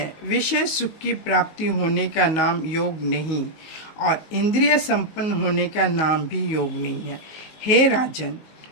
विषय सुख की प्राप्ति होने का नाम योग नहीं, और इंद्रिय संपन्न होने का नाम भी योग नहीं है। हे राजन,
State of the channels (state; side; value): late; right; 19 ms